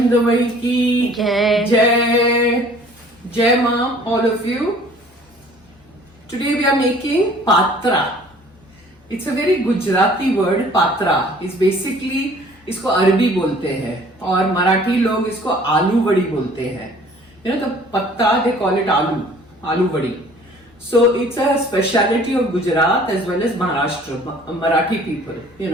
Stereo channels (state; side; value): normal; both; correlation 0.52